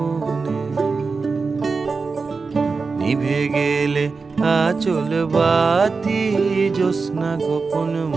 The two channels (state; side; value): quieter; left; 4.5 dB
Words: নিভে গেলে আচল বাতি জ্যোৎস্না গোপন